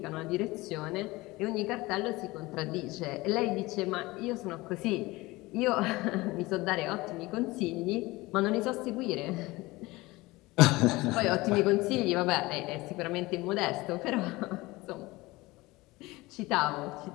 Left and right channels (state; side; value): quieter; right; 21.0 dB